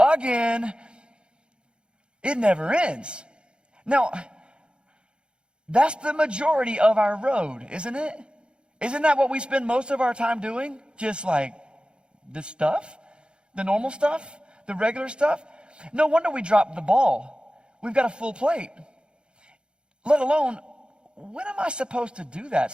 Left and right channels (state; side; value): late; left; 0.054 ms